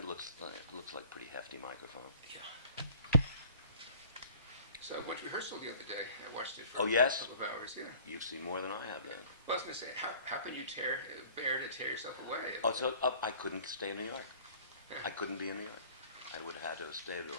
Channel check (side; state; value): both; inverted; correlation -0.49